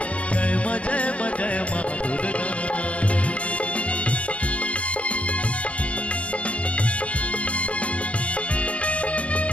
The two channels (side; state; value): right; late; 0.063 ms